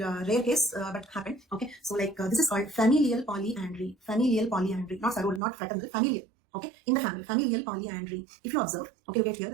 rare case, but happened. Okay, so this is called familial polyandry. Not sororal, not fraternal, familial. Okay, in the family, familial polyandry. If you observe, okay, look at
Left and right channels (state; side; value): drops out; left; at 5.4 s